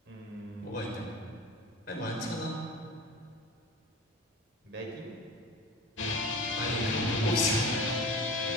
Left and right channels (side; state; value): both; normal; correlation 0.35